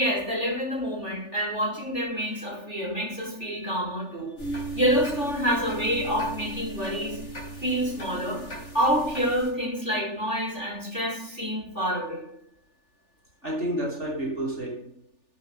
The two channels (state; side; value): late; right; 3.4 ms